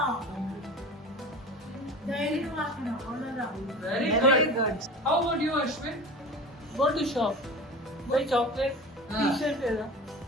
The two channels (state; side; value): normal; both; correlation 0.34